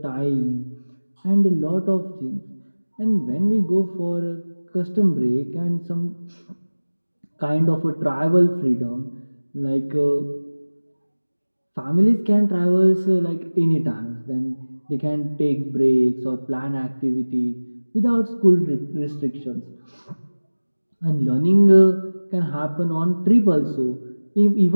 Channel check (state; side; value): inverted; both; correlation -1.00